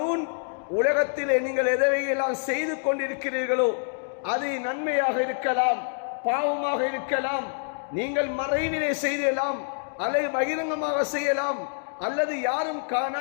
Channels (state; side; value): silent; right; digital silence